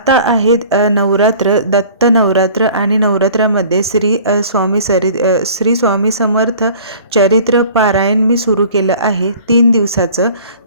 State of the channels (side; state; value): both; inverted; correlation -0.47